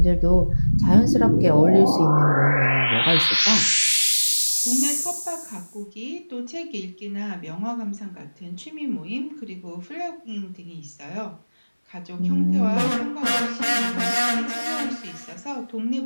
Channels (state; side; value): inverted; both; correlation -1.00